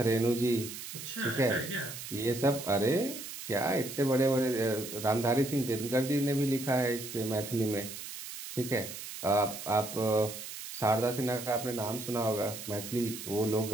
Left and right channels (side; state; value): right; noise; hiss, 10 dB below the sound